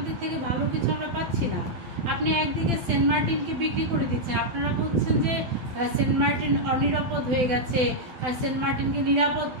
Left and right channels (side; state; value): left; late; 12 ms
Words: থেকে ভালো কিছু আমরা পাচ্ছি না। আপনি একদিকে সেন্ট মার্টিনকে বিক্রি করে দিচ্ছেন, আপনারা বলছেন যে সেন্ট মার্টিন অনিরাপদ হয়ে গেছে, আর সেন্ট মার্টিনকে নিরাপদ